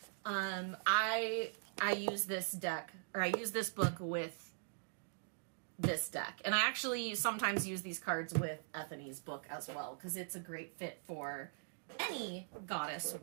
I use this deck, or I use this book with this deck. And I actually sometimes use these cards with Ethany's book as well, because it's a great fit for any goddess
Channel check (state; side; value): silent; left; digital silence